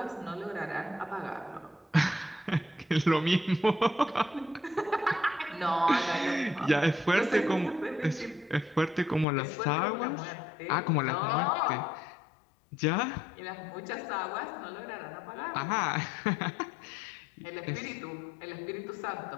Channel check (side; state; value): right; drops out; at 9.2 s